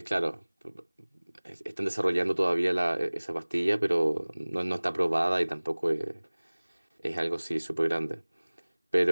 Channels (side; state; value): both; inverted; correlation -1.00